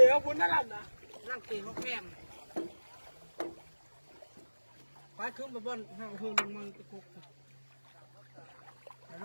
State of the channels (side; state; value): both; inverted; correlation -1.00